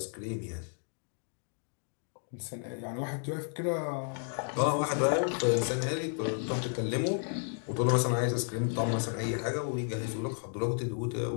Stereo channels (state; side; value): silent; right; 56 dB below the other